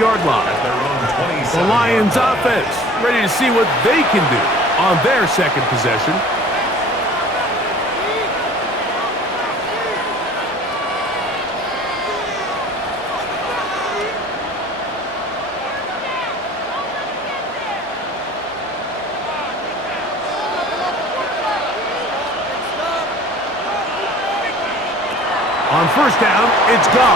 line. The Lions offense ready to see what they can do on their 2nd possession. On 1st down, it's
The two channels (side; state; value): right; noise; hum, 25 dB below the sound